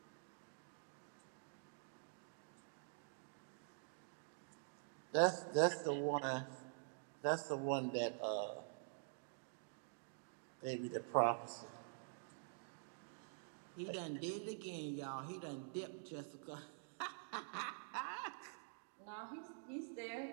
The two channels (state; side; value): silent; left; digital silence